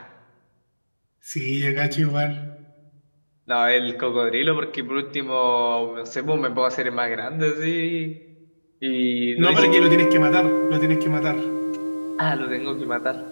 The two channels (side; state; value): both; inverted; correlation -1.00